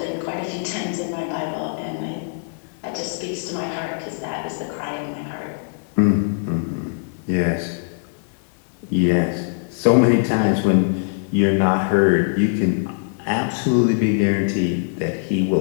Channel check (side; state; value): right; silent; digital silence